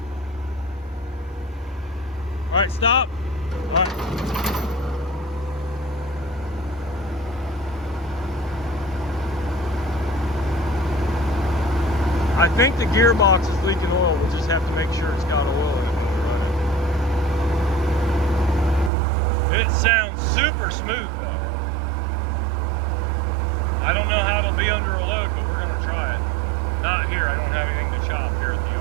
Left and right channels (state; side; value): drops out; left; at 18.9 s